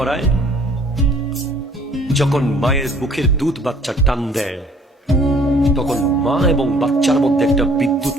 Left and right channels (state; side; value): normal; both; correlation 0.56